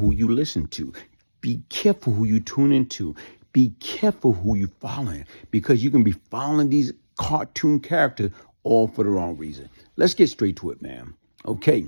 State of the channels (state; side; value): inverted; both; correlation -1.00